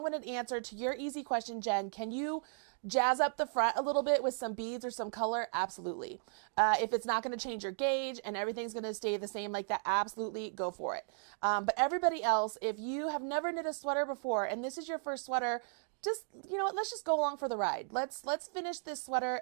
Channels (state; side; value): silent; left; 54 dB below the other